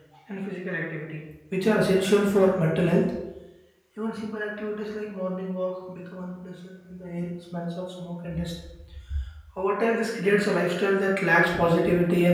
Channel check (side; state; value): both; identical; correlation 1.00